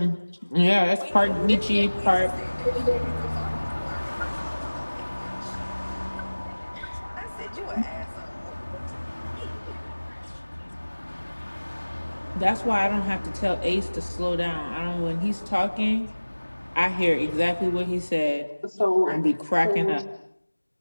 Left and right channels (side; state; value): both; inverted; correlation -1.00